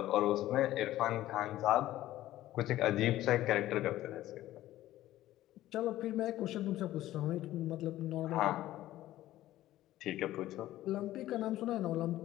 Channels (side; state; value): right; quieter; 14.7 dB